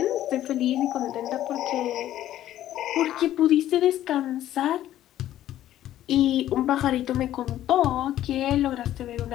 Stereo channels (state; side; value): quieter; right; 12.8 dB